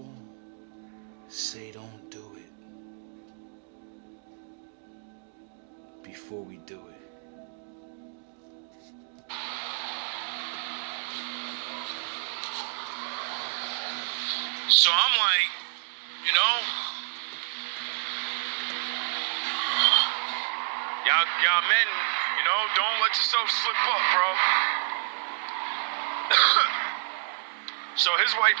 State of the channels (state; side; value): silent; left; digital silence